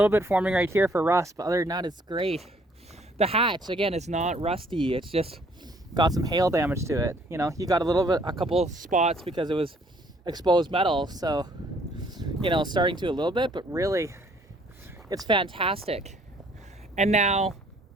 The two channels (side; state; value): both; normal; correlation 0.62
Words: bit forming right here for rust, but other than that, it's great. The hatch, again, is not rusty. It's just got some hail damage to it. You know, you got a couple spots because it was exposed metal. So, you know, starting to a little bit, but really, it's fantastic. And now,